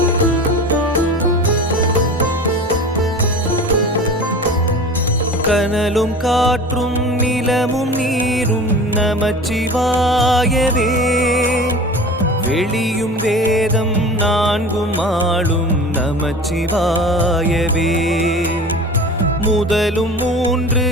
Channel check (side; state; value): both; normal; correlation 0.36